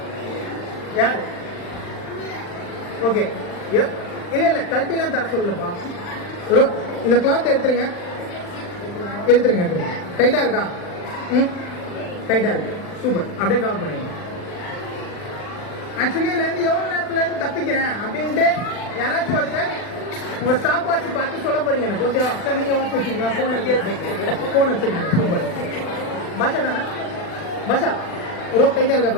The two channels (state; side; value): late; right; 40 ms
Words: யாரு? ஓகே, இல்ல கழட்டிலாம் தர சொல்லப்பா. இந்த கிளாத் எடுத்துருங்க. டைட்டா இருக்கா? டைட்டா இருக்கு, சூப்பர். அப்படியே கவர் பண்ணிடுங்க. ஆக்சுவலி இதுல இருந்து எவ்வளவு நேரத்துல இருந்து தப்பிக்கிறேன் அப்படின்ட்டு யாராச்சும் ஒருத்தர் உங்க ஸ்டாப் வாட்ச் பார்த்து சொல்ல போறீங்க எனக்கு. ஓகேவா சார்? நீங்க வாட்ச் வச்சிருக்கீங்களா? போன் வச்சிருக்கீங்க, சூப்பர். பாஷா தானே? பாஷா, ரோப் டைட்டா இருக்கா